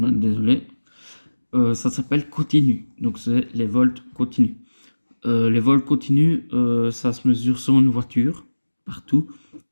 ça s'appelle continu. Donc c'est les volts continus. Les volts continus, ça se mesure sur une voiture, partout,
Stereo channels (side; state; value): both; inverted; correlation -1.00